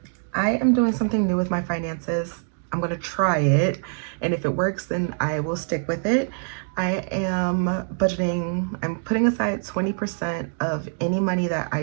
I am doing something new with my finances. I'm going to try it, and if it works, then I will stick with it. I am budgeting, I'm putting aside 20% of any money that I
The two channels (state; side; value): silent; left; 58 dB below the other